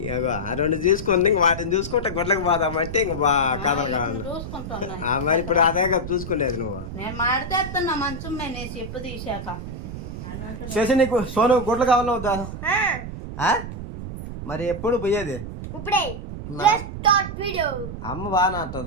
2 తీసుకుంది. ఇంక వాటిని చూసుకుంటే గుడ్లకు పోదామంటే ఇంక కథలు కావాలి. మరి ఇప్పుడు అదే కదా చూసుకునేది నువ్వు. నేను మాడితేస్తున్నా మంచం మేనేసి ఎప్పుడు తీసాక. శశి నీకు సోను గుడ్లు కావాలా వద్దా? మరి ఎప్పుడు పోయేది? అమ్మ బాగా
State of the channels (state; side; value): noise; right; rumble, 8 dB below the sound